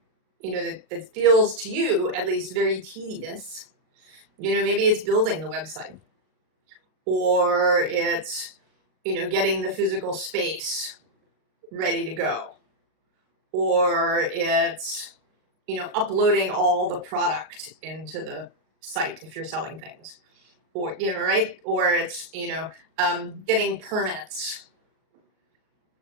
feels to you at least very tedious, maybe it's building the website, or it's, getting the physical space ready to go, or it's, uploading all the product into the site if you're selling things, or, right? Or it's, getting permits,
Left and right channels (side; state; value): left; late; 38 ms